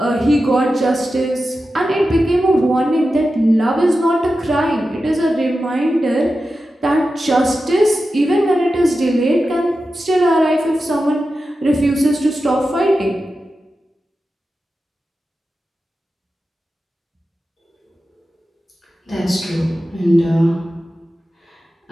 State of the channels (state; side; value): normal; both; correlation 0.92